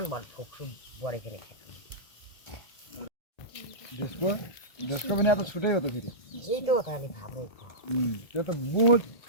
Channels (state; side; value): late; right; 1.2 ms